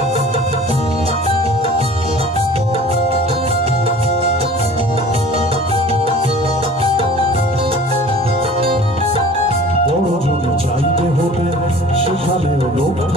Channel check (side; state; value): both; normal; correlation 0.45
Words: বড় যদি চাইতে হতে সেখানেও লোক